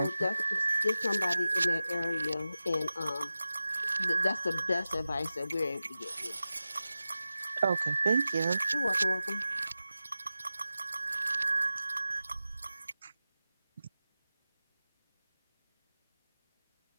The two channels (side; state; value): both; inverted; correlation -0.93